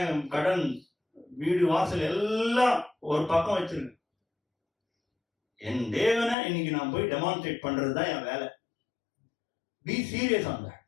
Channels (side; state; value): right; drops out; at 6.4 s